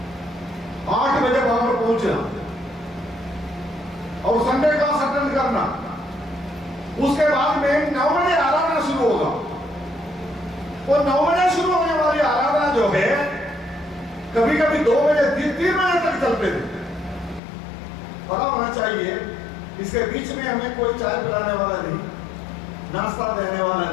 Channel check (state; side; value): drops out; right; at 17.4 s